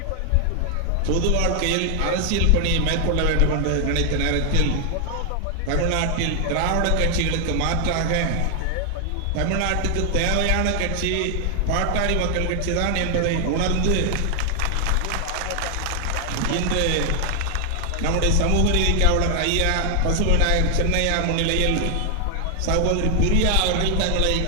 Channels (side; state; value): both; different; correlation 0.00